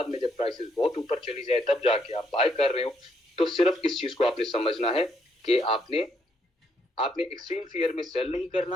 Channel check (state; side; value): normal; both; correlation 0.74